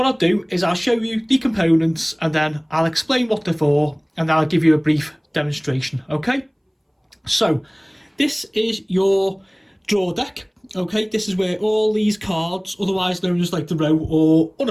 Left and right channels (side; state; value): both; identical; correlation 1.00